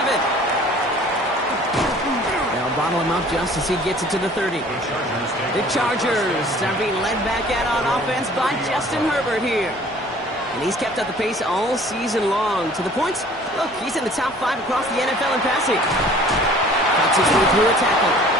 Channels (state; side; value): normal; both; correlation 0.51